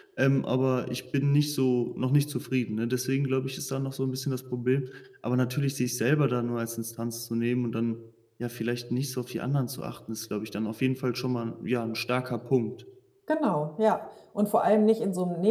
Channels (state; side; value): identical; both; correlation 1.00